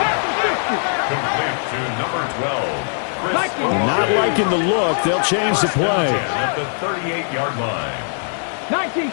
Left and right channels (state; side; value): silent; right; digital silence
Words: Complete to number 12. Not liking the look. They'll change the play. At the 38-yard line. 19